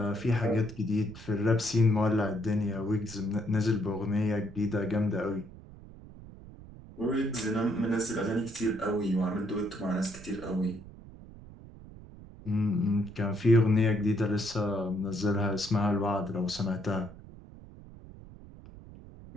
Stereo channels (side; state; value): right; noise; rumble, 17 dB below the sound